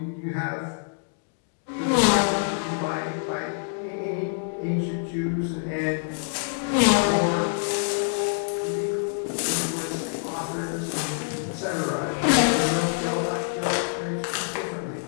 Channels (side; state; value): right; silent; digital silence